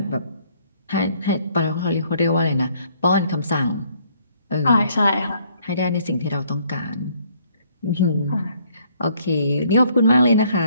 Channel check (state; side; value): inverted; both; correlation -0.64